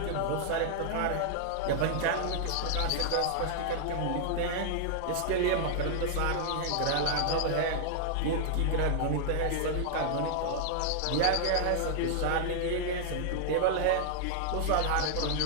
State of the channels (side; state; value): both; different; correlation -0.01